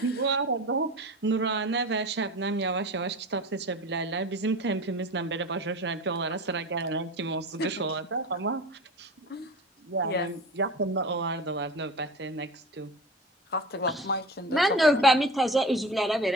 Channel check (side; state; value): both; normal; correlation 0.32